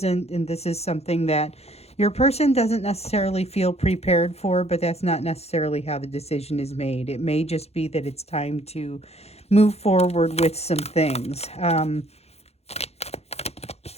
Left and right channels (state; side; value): late; right; 0.30 ms